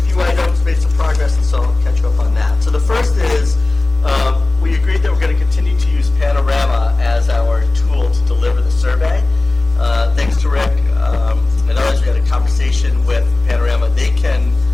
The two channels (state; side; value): quieter; right; 3.1 dB